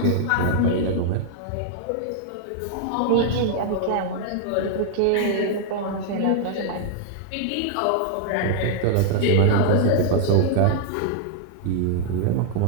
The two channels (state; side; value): different; both; correlation -0.01